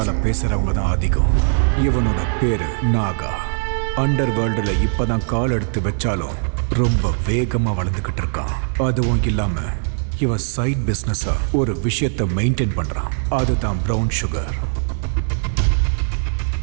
பேசுறவங்க தான் அதிகம். இவனோட பேரு நாகா. அண்டர் வேர்ல்டுல இப்பதான் கால் எடுத்து வச்சாலும் ரொம்ப வேகமா வளர்ந்துகிட்டு இருக்கான். அதுவும் இல்லாம இவன் சைட் பிசினஸா ஒரு விஷயத்தை மெயின்டைன் பண்றான். அதுதான் பிரவுன் சுகர்.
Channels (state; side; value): silent; left; digital silence